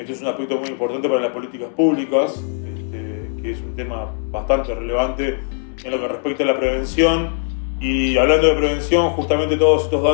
es un aspecto muy importante para las políticas públicas, que es un tema bastante relevante en lo que respecta a la prevención. Y hablando de prevención, justamente todos estos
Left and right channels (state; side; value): silent; right; 61 dB below the other